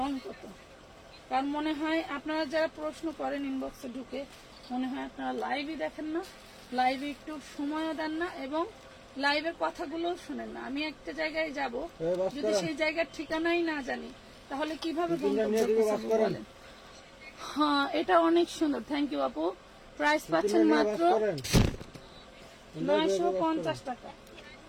কত, কারণ মনে হয় আপনারা যারা প্রশ্ন করেন ইনবক্সে ঢুকে, মনে হয় আপনারা লাইভই দেখেন না, লাইভে একটু সময়ও দেন না, এবং লাইভের কথাগুলো শুনেন না। আমি একটা জায়গায় যাব, যদি সেই জায়গার ঠিকানাই না জানি, তাহলে কিভাবে বলেন? হ্যাঁ, এটা অনেক সুন্দর, থ্যাংক ইউ আপু। প্রাইস পাচ্ছেন মাত্র 950 টাকা,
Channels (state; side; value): identical; both; correlation 1.00